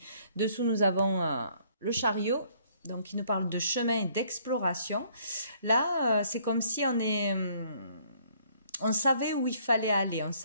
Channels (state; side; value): inverted; both; correlation -0.63